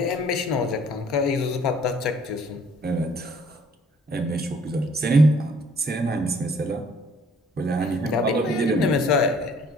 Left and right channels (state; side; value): normal; both; correlation 0.58